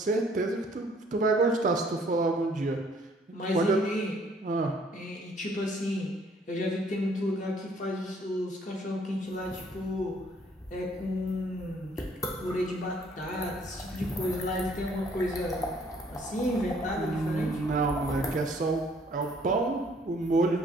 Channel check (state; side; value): normal; both; correlation 0.62